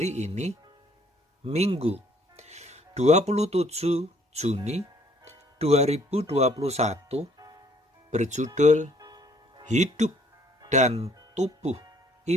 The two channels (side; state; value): both; normal; correlation 0.62